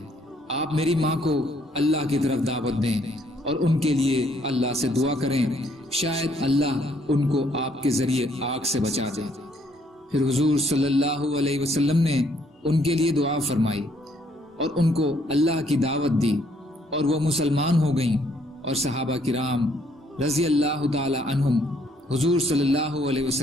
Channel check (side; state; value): both; normal; correlation 0.67